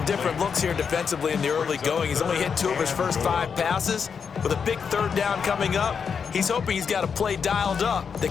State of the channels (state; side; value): quieter; right; 6.4 dB